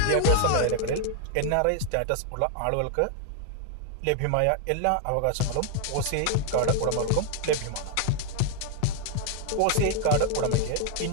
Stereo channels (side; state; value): both; different; correlation 0.00